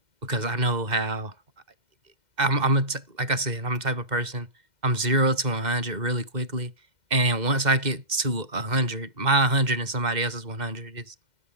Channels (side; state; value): left; late; 2.1 ms